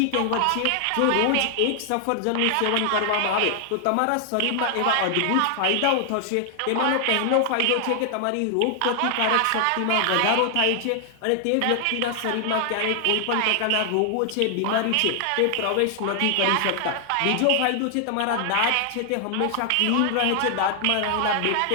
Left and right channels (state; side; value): different; both; correlation 0.00